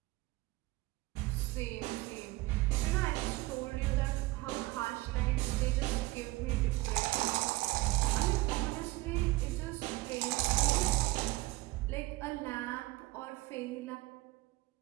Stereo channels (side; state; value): left; quieter; 20.8 dB